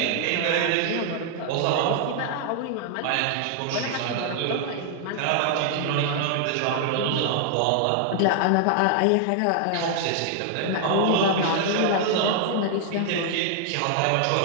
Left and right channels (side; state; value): both; different; correlation 0.00